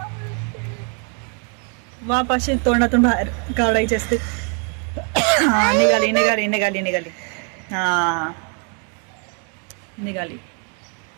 वाफ अशी तोंडातून बाहेर काढायची असते. हा, निघाली निघाली निघाली निघाली. हा, निघाली.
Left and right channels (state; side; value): quieter; left; 39.1 dB